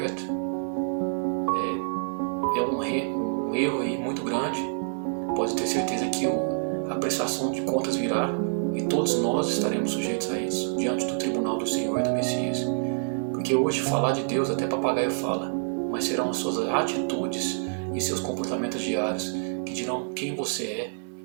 É um erro aí muito grande. Pode ter certeza que a prestação de contas virá e todos nós estaremos sujeitos a isso, diante do tribunal do Senhor e do Messias. Porque hoje falar de Deus até papagaio fala, mas serão as suas atitudes e seus comportamentos diários que dirão quem você é,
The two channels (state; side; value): silent; left; 60 dB below the other